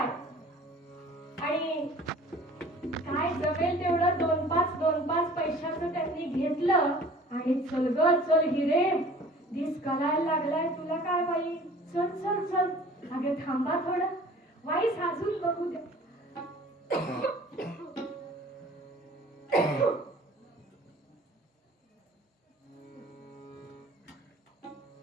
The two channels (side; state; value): both; normal; correlation 0.47